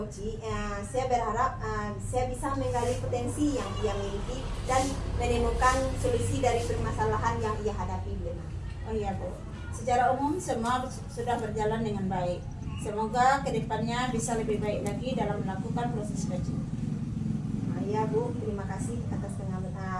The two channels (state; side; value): identical; both; correlation 1.00